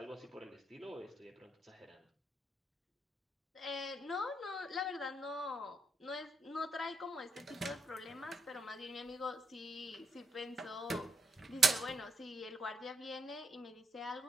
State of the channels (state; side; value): normal; both; correlation 0.79